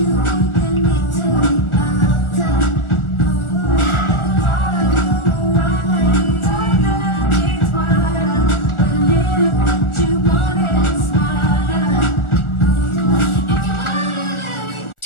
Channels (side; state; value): right; late; 1.4 ms